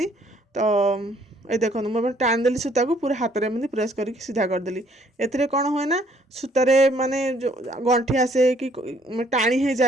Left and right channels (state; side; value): normal; both; correlation 0.63